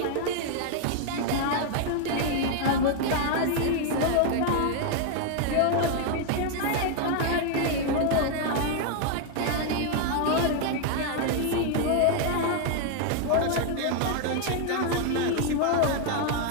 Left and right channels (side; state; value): both; different; correlation 0.00